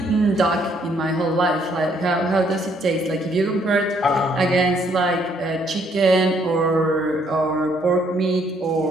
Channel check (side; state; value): both; normal; correlation 0.68